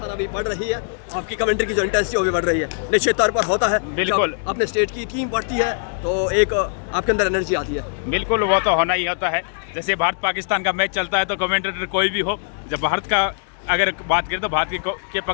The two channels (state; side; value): silent; right; digital silence